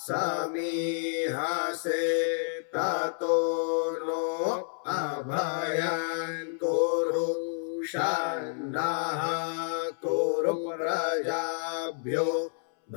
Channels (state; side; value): silent; right; 58 dB below the other